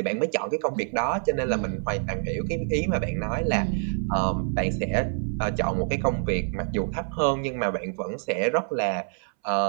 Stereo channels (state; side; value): silent; left; 61 dB below the other